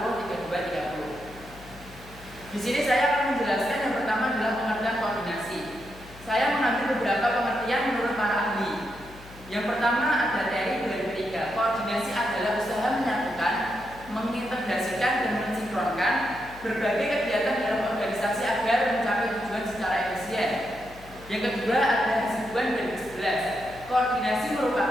Di sini saya akan menjelaskan yang pertama adalah pengertian koordinasi. Saya mengambil beberapa pengertian menurut para ahli. Yang pertama ada Terry 2003. Koordinasi adalah usaha menyatukan, mengintegrasikan dan mensinkronkan berbagai kegiatan dalam organisasi agar mencapai tujuan secara efisien. Yang kedua ada Hasibuan 2011. Koordinasi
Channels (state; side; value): noise; left; hum, 19 dB below the sound